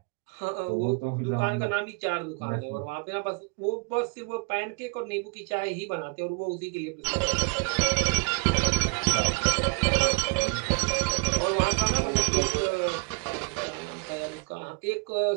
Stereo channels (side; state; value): left; quieter; 32.3 dB